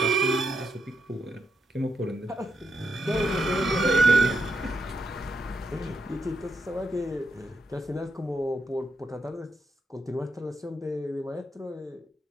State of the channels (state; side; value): normal; both; correlation 0.82